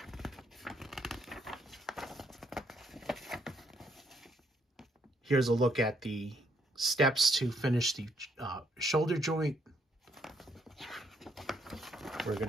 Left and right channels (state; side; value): normal; both; correlation 0.71